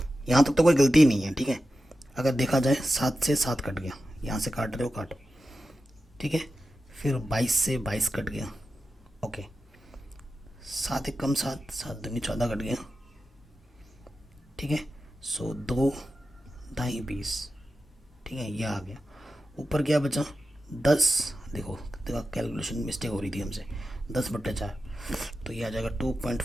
यहाँ तक तो कोई गलती नहीं है, ठीक है। अगर देखा जाए 7 से 7 कट गया, यहाँ से काट रहे हो काटो। ठीक है, फिर 22 से 22 कट गया, ओके। 7 1 कम 7, 7 दूनी 14 कट गया। ठीक है। सो 2 दाई 20, ठीक है, ये आ गया। ऊपर क्या बचा 10, देखो कैलकुलेशन मिस्टेक हो रही थी हमसे, 10/4, तो ये आ जाएगा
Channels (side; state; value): both; normal; correlation 0.92